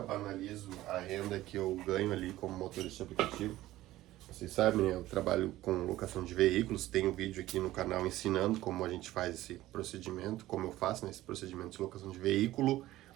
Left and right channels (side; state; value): left; quieter; 15.8 dB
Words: banalizo a renda que eu ganho ali como motorista de aplicativo. Vocês sabem, eu trabalho com locação de veículos, tenho vídeo aqui no canal ensinando como a gente faz esse procedimento, como eu faço nesse procedimento de locação de veículo,